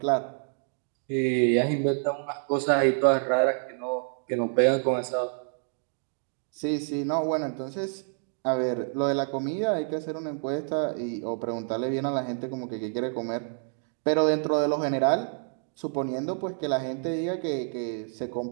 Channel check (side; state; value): left; silent; digital silence